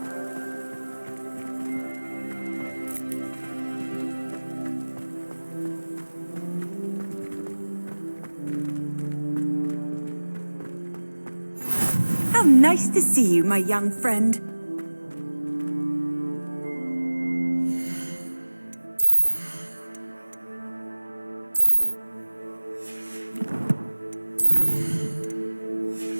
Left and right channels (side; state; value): both; inverted; correlation -1.00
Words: How nice to see you, my young friend.